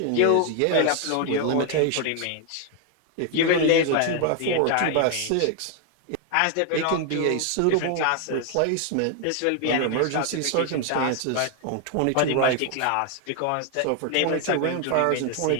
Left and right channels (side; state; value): both; different; correlation 0.00